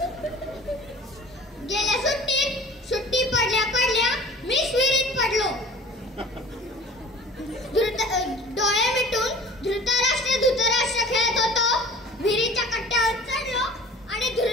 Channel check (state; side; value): normal; both; correlation 0.44